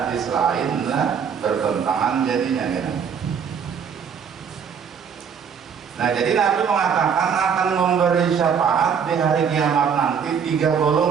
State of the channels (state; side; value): quieter; left; 7.0 dB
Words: lain lah bertentangan jadinya kena. Nah jadi Nabi mengatakan akan memberi syafaat di hari kiamat nanti 3